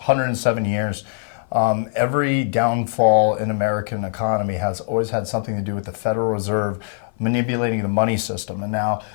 years, every downfall in American economy has always had something to do with the Federal Reserve manipulating the money system. And now,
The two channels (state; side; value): silent; right; 56 dB below the other